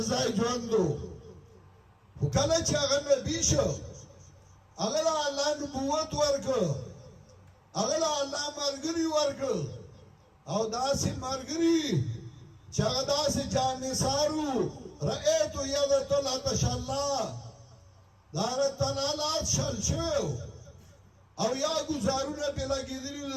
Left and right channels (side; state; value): both; identical; correlation 1.00